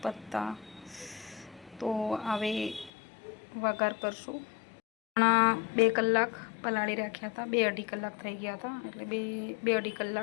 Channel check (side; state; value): right; drops out; at 2.9 s